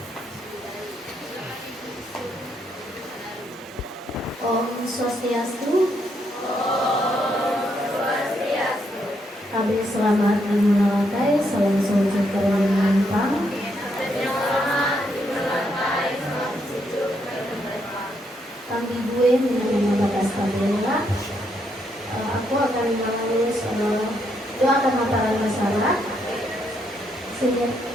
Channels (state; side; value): normal; both; correlation 0.76